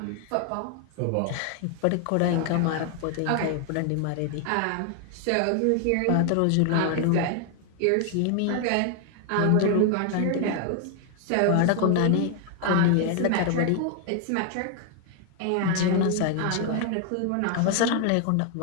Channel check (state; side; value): different; both; correlation 0.00